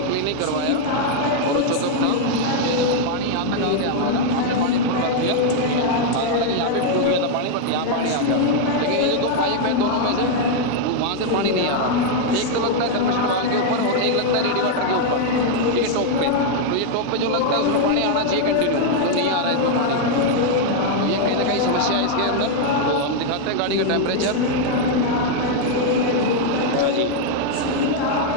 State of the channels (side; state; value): both; different; correlation 0.00